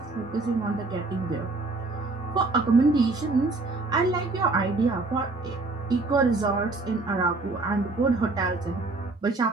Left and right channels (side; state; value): left; quieter; 3.4 dB